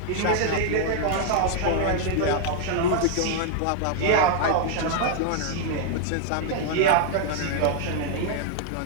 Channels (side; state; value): both; different; correlation 0.00